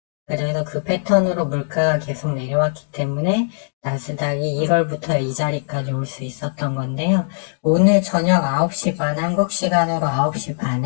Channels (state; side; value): silent; right; digital silence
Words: 그래서 그 패턴으로 물가가 계속 내려왔기 때문에 나스닥이 1월부터 이 자리까지 올 수 있었던 건데요. 오늘 저녁 9시 반, 한국 시간으로 9시